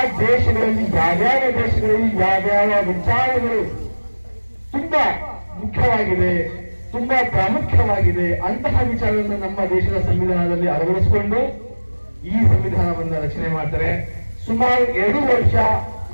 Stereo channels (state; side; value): inverted; both; correlation -1.00